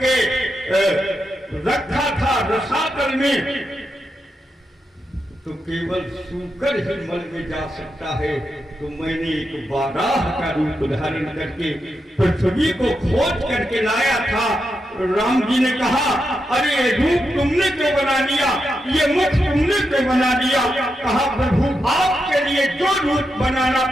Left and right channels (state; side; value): normal; both; correlation 0.86